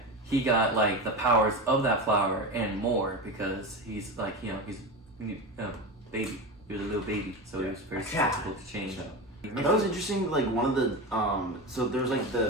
he got, like, the powers of that flower and more because he's, like, he's a baby. He was a little baby, so he was very susceptible to change. That was interesting. Like one of the so there's like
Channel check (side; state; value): both; normal; correlation 0.23